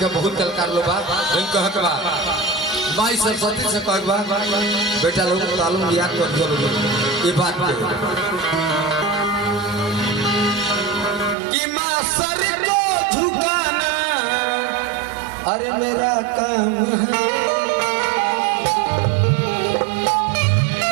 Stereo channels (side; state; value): left; drops out; at 11.4 s